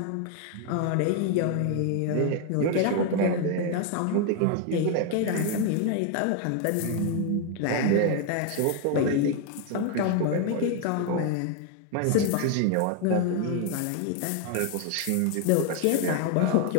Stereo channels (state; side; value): different; both; correlation 0.00